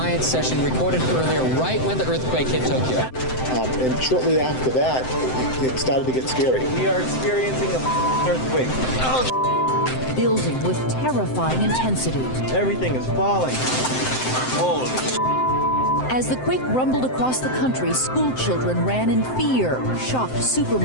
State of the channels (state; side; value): late; right; 7.8 ms